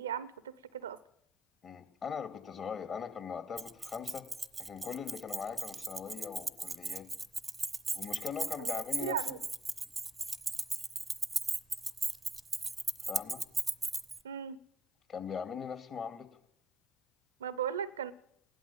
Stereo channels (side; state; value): both; normal; correlation 0.64